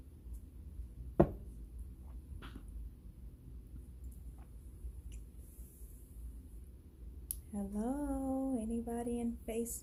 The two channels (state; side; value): identical; both; correlation 1.00